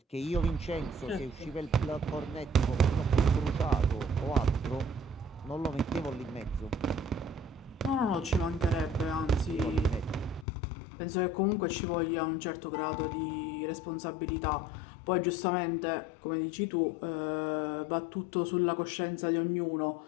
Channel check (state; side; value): drops out; right; at 10.5 s